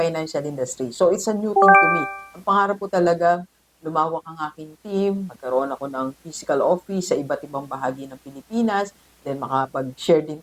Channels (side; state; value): both; identical; correlation 1.00